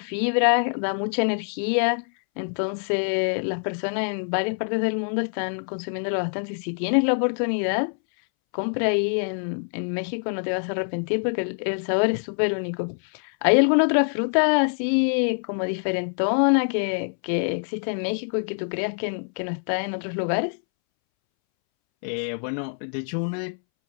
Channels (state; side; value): silent; right; 62 dB below the other